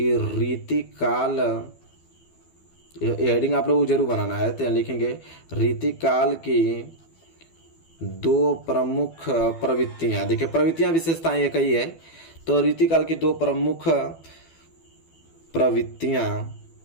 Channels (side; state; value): right; late; 12 ms